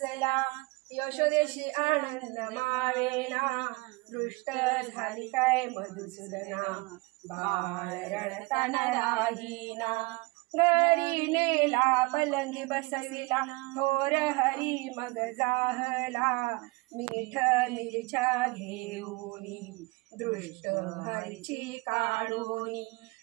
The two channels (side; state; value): left; quieter; 24.8 dB